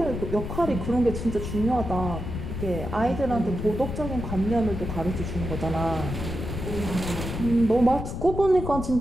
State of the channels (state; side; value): noise; left; rumble, 6 dB below the sound